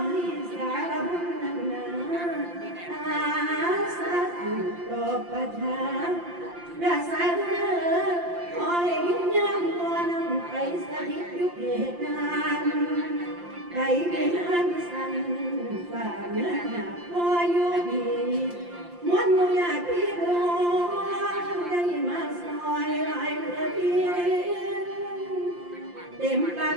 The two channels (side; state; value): left; late; 5.7 ms